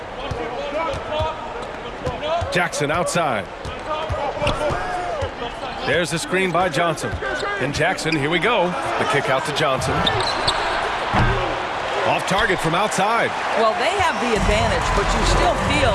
Jackson outside. There's the screen by Johnson. And Jackson, here we go. The kick out to Johnson. Off target from outside. Well, they have the advantage, but you still feel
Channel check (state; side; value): identical; both; correlation 1.00